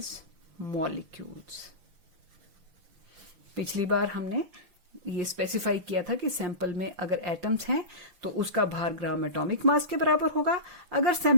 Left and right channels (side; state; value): left; late; 6.0 ms